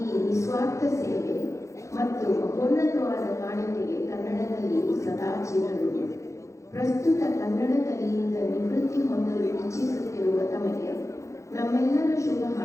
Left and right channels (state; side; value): late; right; 0.15 ms